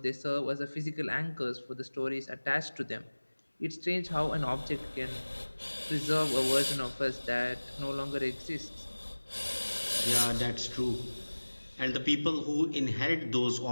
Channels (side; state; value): both; inverted; correlation -1.00